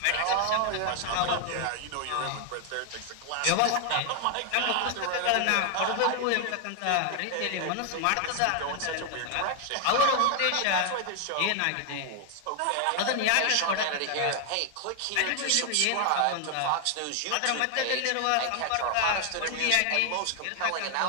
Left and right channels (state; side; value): different; both; correlation 0.00